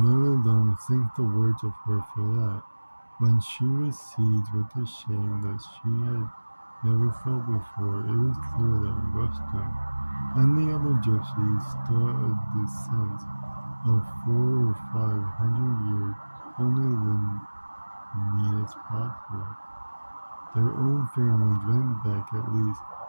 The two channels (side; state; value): both; inverted; correlation -1.00